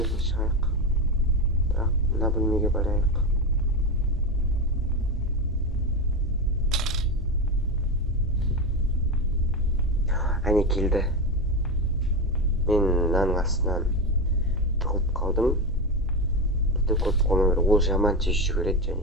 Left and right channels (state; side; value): normal; both; correlation 0.16